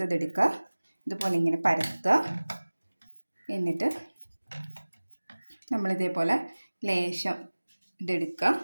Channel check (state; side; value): inverted; both; correlation -1.00